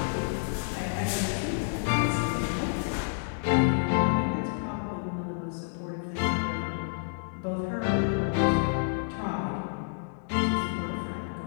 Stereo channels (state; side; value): silent; right; digital silence